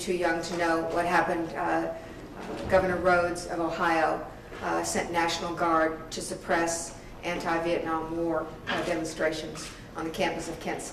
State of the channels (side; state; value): both; identical; correlation 1.00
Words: young to know what happened, Governor Rhodes of Ohio sent National Guard to suppress anti-Vietnam War demonstrations on the campus of Kent